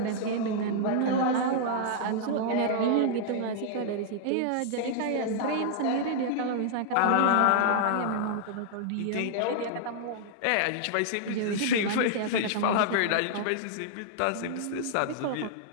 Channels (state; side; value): different; both; correlation -0.01